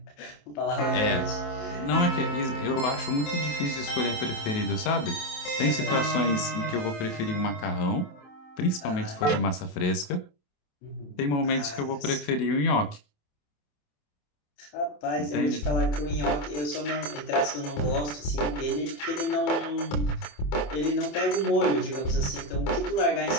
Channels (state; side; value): late; right; 27 ms